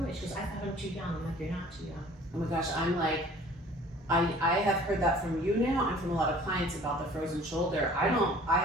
it. She goes, "I thought I'm too young." I'm like, "You're not too young." Oh my gosh, I'm like, I have heard that from you now and from a lot of clients about the frozen shoulder. I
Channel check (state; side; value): normal; both; correlation 0.50